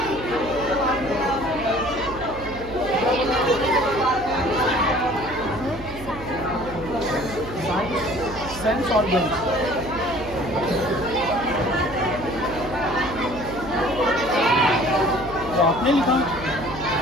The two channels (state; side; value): noise; right; hum, 13 dB below the sound